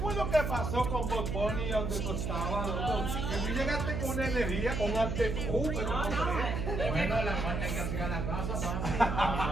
lo que pasó con Bob Bunny donde tú estabas, loco? Que tú llegaste con una energía, con actitud, pero no sé. Bueno, la falta que hacía la casa,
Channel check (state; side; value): noise; right; hum, 2 dB below the sound